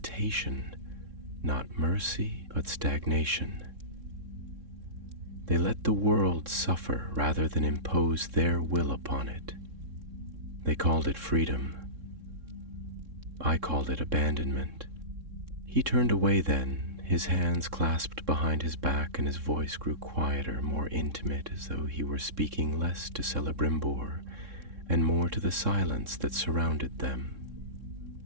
not mercy, but stagnation. They let the world suffer rather than impose their will upon it. They called it freedom. I called it abandonment." He turned away then, his hands clasped behind his back, and his voice grew quieter, more intimate, as though he were speaking less to Celebrimbor and more to the silence that surrounded them.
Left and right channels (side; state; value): left; late; 3.6 ms